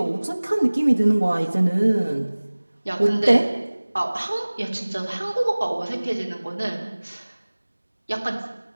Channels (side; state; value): both; inverted; correlation -1.00